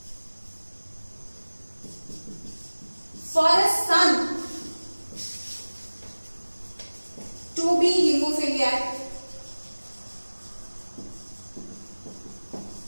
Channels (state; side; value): inverted; both; correlation -1.00